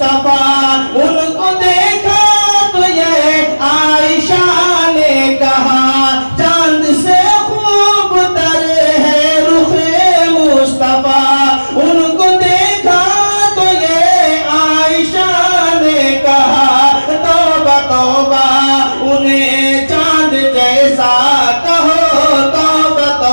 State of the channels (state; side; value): inverted; both; correlation -1.00